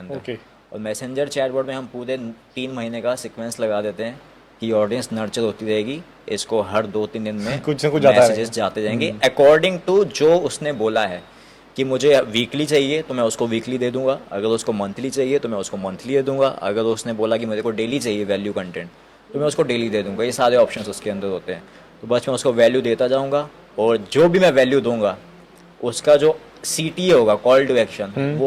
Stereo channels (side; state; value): both; identical; correlation 1.00